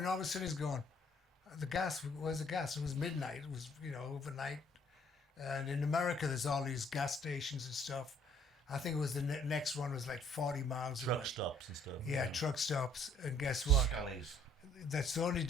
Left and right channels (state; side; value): normal; both; correlation 0.62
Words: All of a sudden, he's going, "The gas. Where's the gas?" It was midnight. It was overnight. And in America, there's all these gas stations and stuff. I think it was the next one was like 40 miles away. Truck stops and stuff. Yeah, truck stops. And guess what? Scully's. That's the only